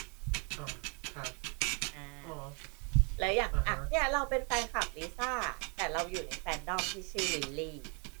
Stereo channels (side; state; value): left; quieter; 35.0 dB